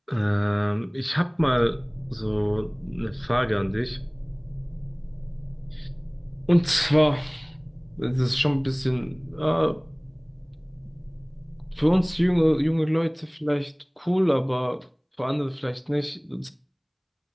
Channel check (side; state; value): both; identical; correlation 1.00